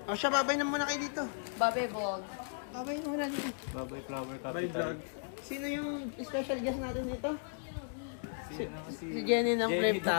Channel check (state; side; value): silent; right; digital silence